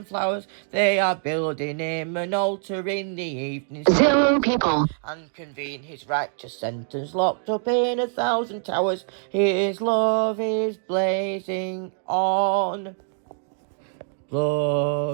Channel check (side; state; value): left; silent; 61 dB below the other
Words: flowers. They are building him an altar in the evening 0 people. and convene his righteous sentence locked up in 1,000 towers. His love is blazing on.